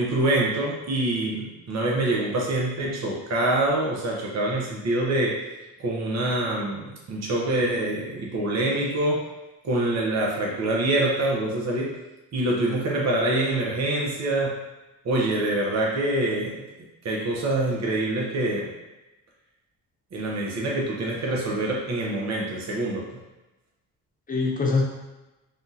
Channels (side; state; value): both; normal; correlation 0.26